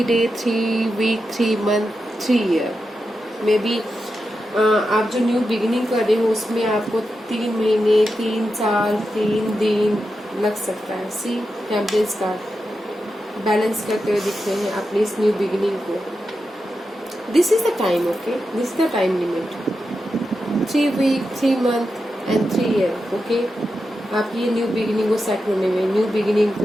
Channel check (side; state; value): both; normal; correlation 0.89